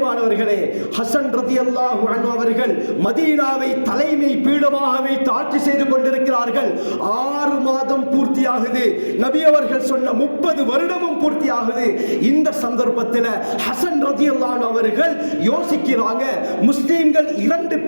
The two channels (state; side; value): inverted; both; correlation -1.00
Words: ஹசன் ரலியல்லாஹு அன்ஹு அவர்கள் மதீனாவை தலைமை பீடமாக வைத்து ஆட்சி செய்து கொண்டிருக்கிறார்கள். 6 மாதம் பூர்த்தியாகுது. நபி அவர்கள் சொன்ன 30 வருடமும் பூர்த்தியாகுது. இந்த சந்தர்ப்பத்தில் ஹசன் ரலியல்லாஹு அன்ஹு அவர்கள் யோசிக்கிறாங்க, முஸ்லிம்கள் 2